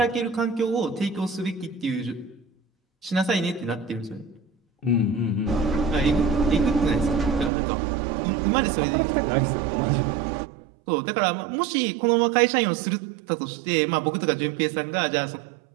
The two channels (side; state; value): left; drops out; at 7.5 s